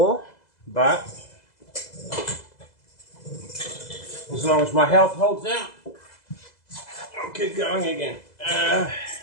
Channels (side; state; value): right; late; 2.0 ms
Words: but as long as my health holds out, I'll keep going again.